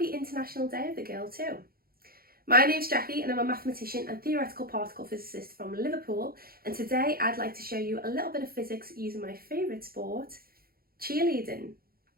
International Day of the Girl too. My name's Jackie and I'm a mathematician and theoretical particle physicist from Liverpool, and today I'd like to show you a little bit of physics using my favourite sport, cheerleading.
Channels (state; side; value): late; left; 0.43 ms